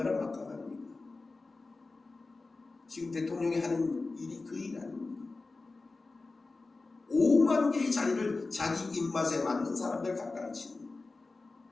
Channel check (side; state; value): right; quieter; 3.6 dB